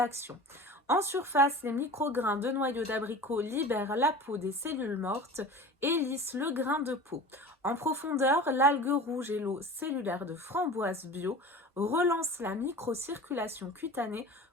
En surface, les micro-grains de noyaux d'abricot libèrent la peau des cellules mortes et lissent le grain de peau. En profondeur, l'algue rouge et l'eau cellulaire de framboise bio relancent la microcirculation cutanée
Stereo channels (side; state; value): both; normal; correlation 0.36